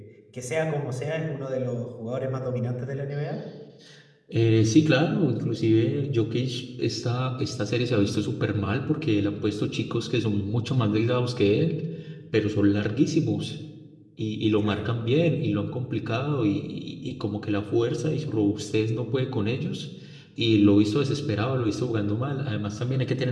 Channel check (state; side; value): identical; both; correlation 1.00